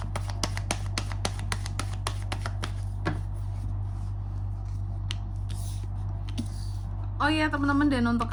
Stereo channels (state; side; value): identical; both; correlation 1.00